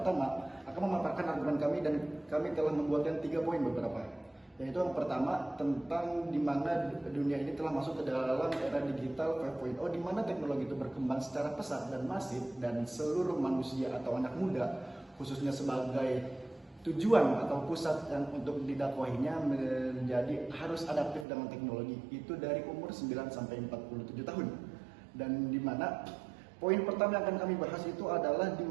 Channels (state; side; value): drops out; left; at 21.2 s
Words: akan memaparkan argumen kami, dan kami telah membuatkan 3 poin beberapa. Yaitu yang pertama tentang di mana dunia ini telah masuk ke dalam era digital 5.0, di mana teknologi itu berkembang secara pesat dan masif, dan seluruh manusia atau anak muda khususnya sebagai tujuan atau pusat yang untuk didakwahinya menjadi harus adaptif dengan teknologi itu dari umur 9 sampai 47 tahun. Dan di mana Poin pertama yang akan kami bahas itu adalah di